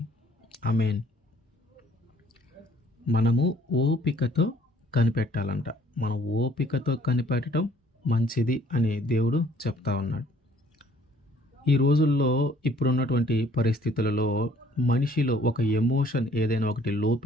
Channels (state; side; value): normal; both; correlation 0.60